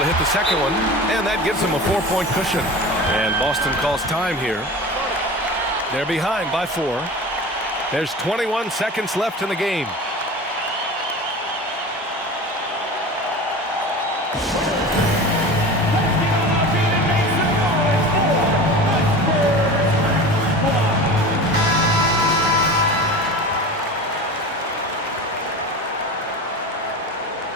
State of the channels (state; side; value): normal; both; correlation 0.33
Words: hit the second one, and that gives him a 4-point cushion. And Boston calls time here. They're behind by 4. There's 21 seconds left in the game.